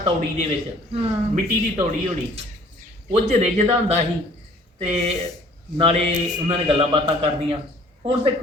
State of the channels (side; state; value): both; normal; correlation 0.54